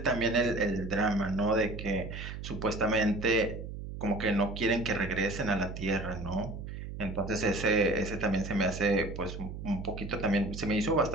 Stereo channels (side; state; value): right; noise; hum, 8 dB below the sound